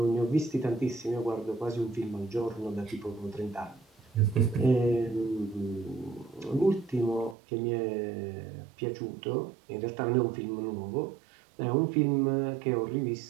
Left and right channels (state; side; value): drops out; left; at 7.4 s